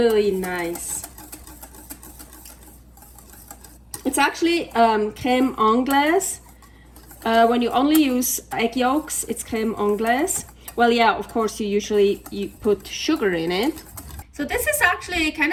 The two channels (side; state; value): both; identical; correlation 1.00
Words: nice. It's actually crème anglaise. When you only use egg yolks, it's crème anglaise. Well, yeah, of course, you put sugar in it. So this is actually kind